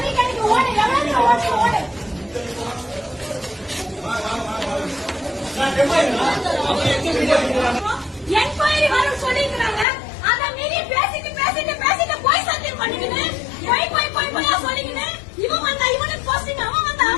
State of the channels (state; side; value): drops out; right; at 9.9 s